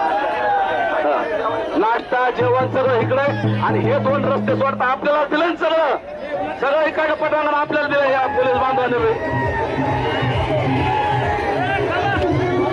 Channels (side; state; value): both; identical; correlation 1.00